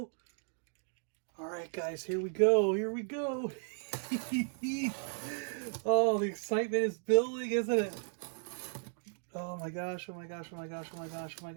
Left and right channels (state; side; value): silent; left; 54 dB below the other